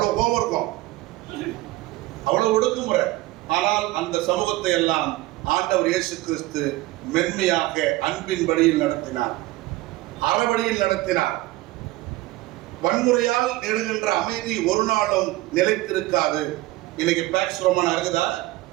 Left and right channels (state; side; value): quieter; left; 18.4 dB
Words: கோபம் இருக்கும், அவ்வளவு ஒடுக்குமுறை. ஆனால் அந்த சமூகத்தை எல்லாம் ஆண்டவர் இயேசு கிறிஸ்து மென்மையாக அன்பின் வழியில் நடத்தினார், அறவழியில் நடத்தினார். வன்முறையால் நெடுகின்ற அமைதி ஒரு நாளும் நிலைத்திருக்காது. இன்னைக்கு பேக்ஸ் ரோமானா இருக்குதா?